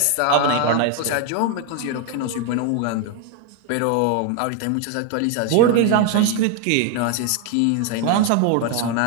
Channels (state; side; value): different; both; correlation 0.01